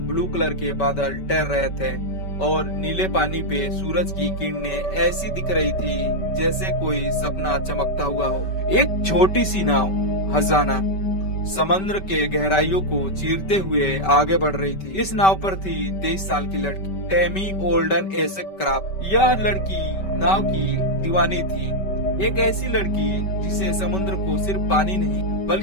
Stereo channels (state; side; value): late; right; 5.2 ms